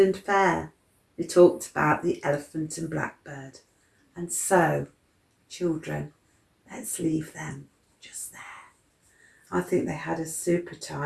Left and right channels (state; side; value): identical; both; correlation 1.00